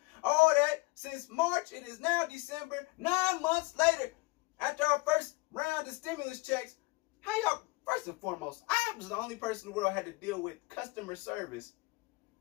all that since March. It is now December. 9 months later. After our first round of stimulus checks, how y'all, first and foremost, I was the only person in the world had to deal with customer service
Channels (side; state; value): right; quieter; 24.1 dB